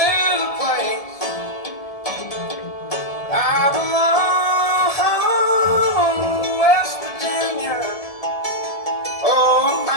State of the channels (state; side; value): late; right; 1.7 ms